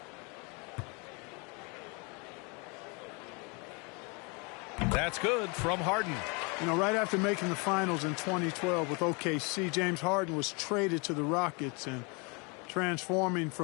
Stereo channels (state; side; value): quieter; right; 31.1 dB